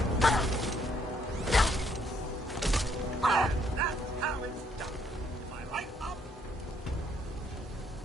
That's how it's done. Am I right, Up?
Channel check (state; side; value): normal; both; correlation 0.69